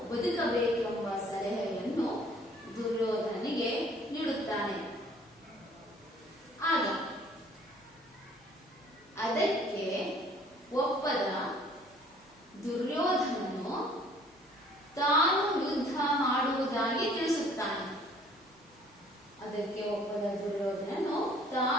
ಬದುಕಬೇಕೆಂಬ ಸಲಹೆಯನ್ನು ದುರ್ಯೋಧನನಿಗೆ ನೀಡುತ್ತಾನೆ. ಆಗ ಅದಕ್ಕೆ ಒಪ್ಪದ ದುರ್ಯೋಧನನು ತಾನು ಯುದ್ಧ ಮಾಡುವುದಾಗಿ ತಿಳಿಸುತ್ತಾನೆ. ಅದಕ್ಕೆ ಒಪ್ಪದ ದುರ್ಯೋಧನನು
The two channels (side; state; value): both; normal; correlation 0.56